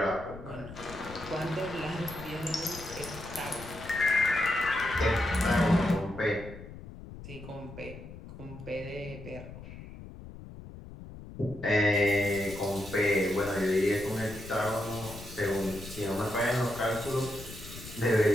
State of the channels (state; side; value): noise; left; rumble, 14 dB below the sound